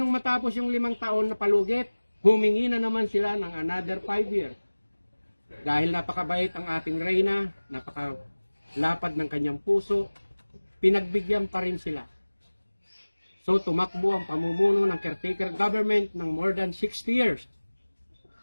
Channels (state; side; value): inverted; both; correlation -1.00